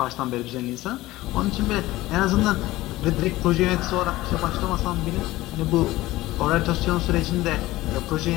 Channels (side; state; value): right; quieter; 17.6 dB